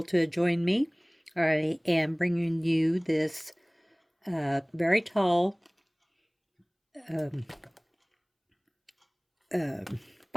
to join me. I am bringing you this very tall um,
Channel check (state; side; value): identical; both; correlation 1.00